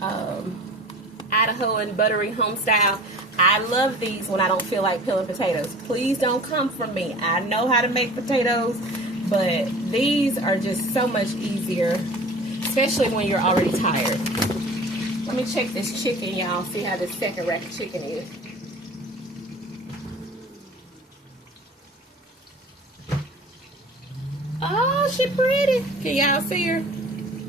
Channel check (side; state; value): both; normal; correlation 0.42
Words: buttery home style. I love these when I don't feel like peeling potatoes. Please don't come from me. I know how to make potatoes, but these are just so much easier, especially when you're already tired. Let me check this chicken, y'all. See how this second rack of chicken is. Oh, she pretty. Can y'all see her?